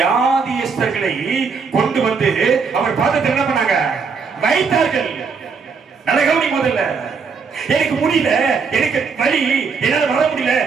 கொண்டு வந்து அவர் பாதத்தில் என்ன பண்ணாங்க? வைத்தார்கள். நல்ல கவனி. முதல்ல எனக்கு முடியல, எனக்கு வலி, என்னால வர முடியல.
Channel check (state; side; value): quieter; left; 5.3 dB